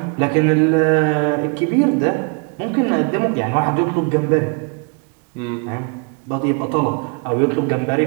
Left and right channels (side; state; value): left; quieter; 35.9 dB